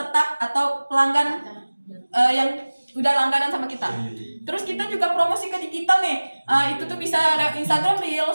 atau pelanggan yang udah langganan sama kita. Terus kita juga promosi ke digital nih. Itu tuh bisa lewat Instagram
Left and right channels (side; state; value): both; inverted; correlation -1.00